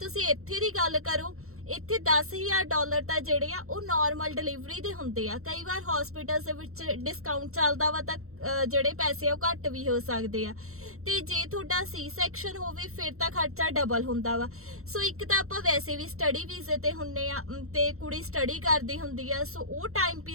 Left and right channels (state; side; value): late; left; 0.63 ms